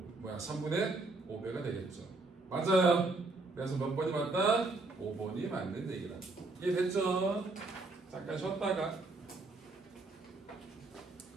3분의 5배가 되겠죠. 맞아요. 그래서 몇 번이 맞다? 5번이 맞는 얘기다. 이해됐죠? 잠깐 쉬었다가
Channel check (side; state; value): left; quieter; 3.4 dB